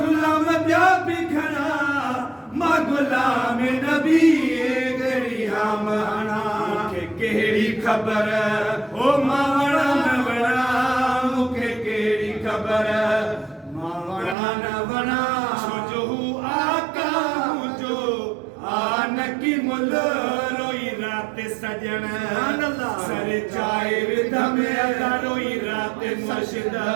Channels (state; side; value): drops out; left; at 14.4 s